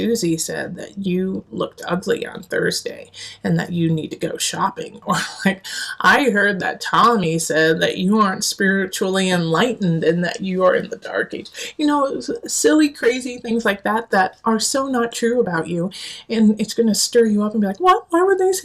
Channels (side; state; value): both; identical; correlation 1.00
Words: said that you looked ugly on Thursday and that you need to go shopping. Or like, I heard that Tommy said that you aren't spiritually enlightened and that you are in the dark age. Silly, crazy things like that are so not true about you. And it's going to stir you up and be like, what? Why would they